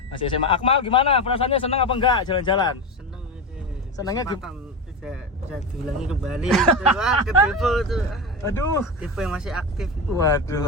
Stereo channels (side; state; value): both; normal; correlation 0.20